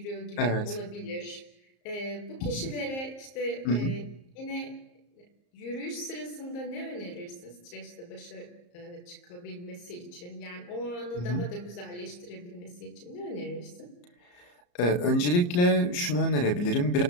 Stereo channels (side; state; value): right; late; 34 ms